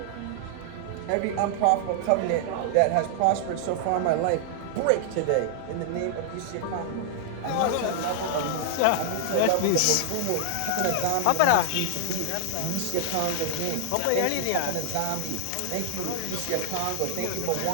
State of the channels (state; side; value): different; both; correlation 0.00